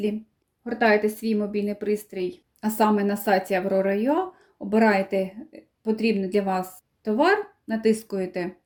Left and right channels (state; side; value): identical; both; correlation 1.00